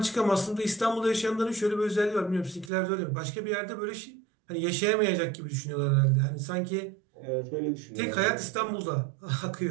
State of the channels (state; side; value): drops out; left; at 2.7 s